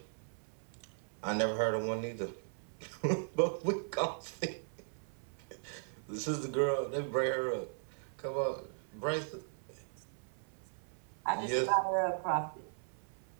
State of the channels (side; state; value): left; silent; 53 dB below the other